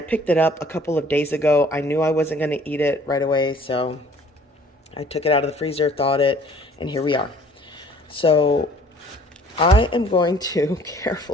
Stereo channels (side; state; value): both; normal; correlation 0.54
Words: picked it up a couple of days ago. I knew I wasn't going to eat it right away, so I took it out of the freezer, thawed it, and here we are. So I am going to